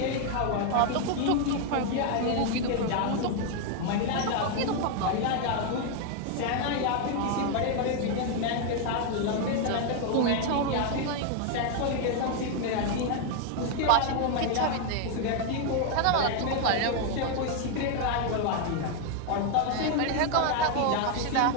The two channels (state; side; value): different; both; correlation 0.00